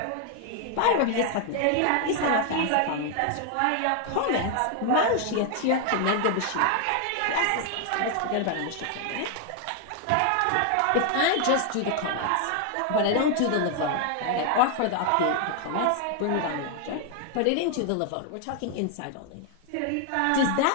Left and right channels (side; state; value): both; different; correlation 0.00